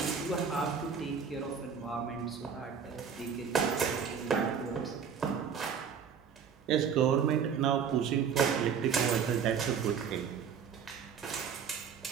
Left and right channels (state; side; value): quieter; left; 7.0 dB